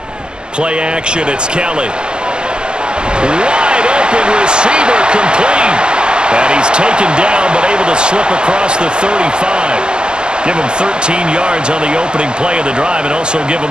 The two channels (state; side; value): late; left; 0.047 ms